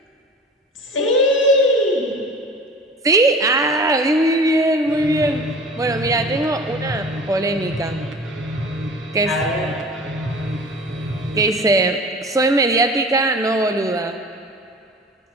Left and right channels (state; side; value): normal; both; correlation 0.40